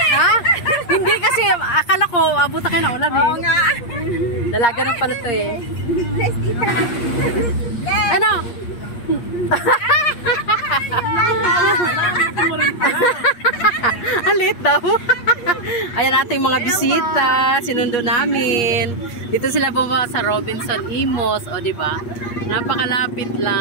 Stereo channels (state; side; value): late; right; 8.5 ms